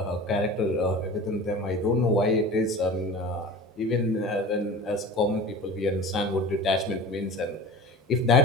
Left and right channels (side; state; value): both; normal; correlation 0.37